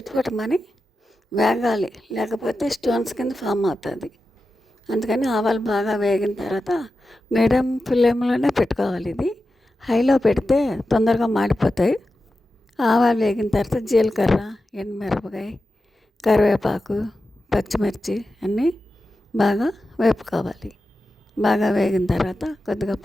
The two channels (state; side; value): normal; both; correlation 0.91